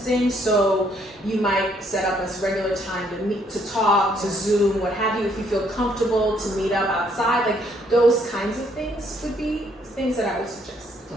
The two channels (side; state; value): both; normal; correlation 0.68